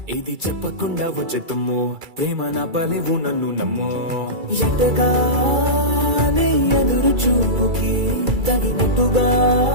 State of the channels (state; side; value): late; left; 2.3 ms